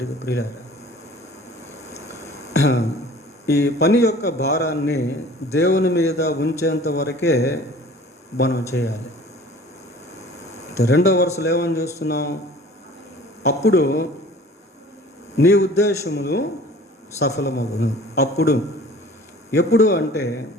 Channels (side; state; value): both; normal; correlation 0.47